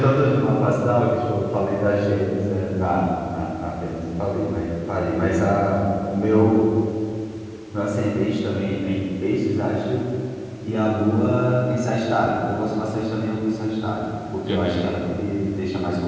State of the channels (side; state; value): both; identical; correlation 1.00